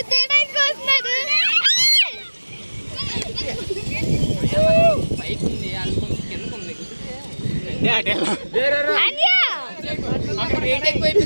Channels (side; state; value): both; inverted; correlation -1.00